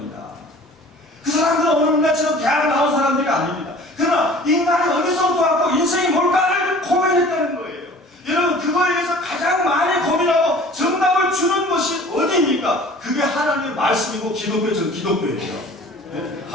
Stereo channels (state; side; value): normal; both; correlation 0.46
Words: 그 사람들은 오늘날처럼 대학 나온 사람들이 아닙니다. 그러나 인간이 어디서부터 왔고 인생이 뭘까를 고민했다는 거예요. 여러분, 그거에 대해서 가장 많이 고민하고 정답을 주는 것이 어디입니까? 그게 하나님의 말씀이고 기독교죠. 기독교예요. 네?